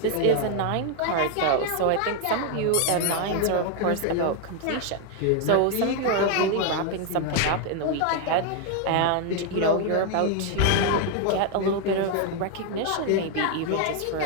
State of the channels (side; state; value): both; different; correlation 0.00